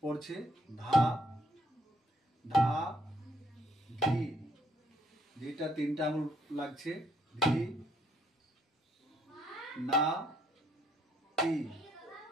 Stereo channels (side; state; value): both; normal; correlation 0.69